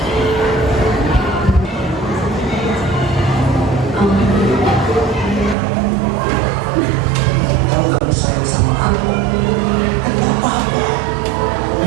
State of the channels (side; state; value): left; drops out; at 5.6 s